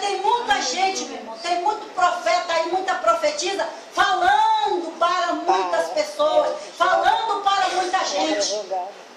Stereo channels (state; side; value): identical; both; correlation 1.00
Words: muita gente, meu irmão, tem muito profeta aí, muita profetisa, falando para muitas pessoas, falando para muita gente.